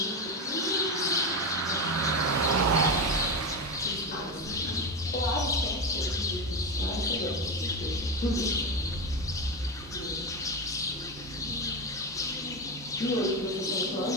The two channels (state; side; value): normal; both; correlation 0.15